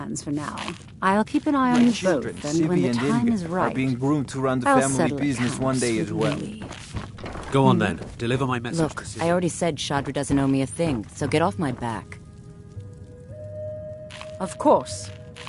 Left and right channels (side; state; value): both; identical; correlation 1.00